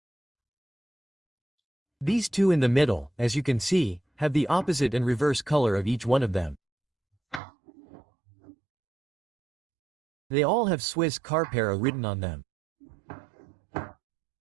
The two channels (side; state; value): left; drops out; at 7.4 s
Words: These 2 in the middle, as you can see, have the opposite and reverse color of each one of them. They all have Swisscarp written on them.